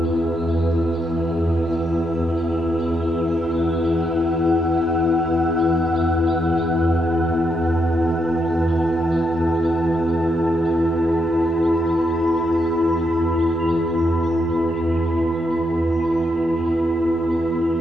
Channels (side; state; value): both; normal; correlation 0.80